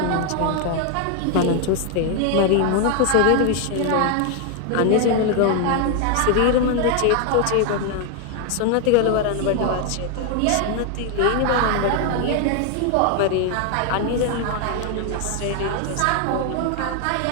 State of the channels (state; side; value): different; both; correlation 0.00